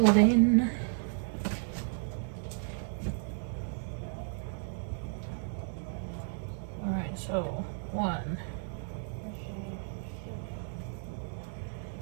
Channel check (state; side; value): silent; left; digital silence